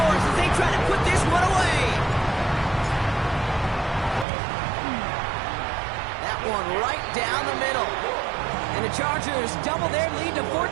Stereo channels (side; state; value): left; drops out; at 4.2 s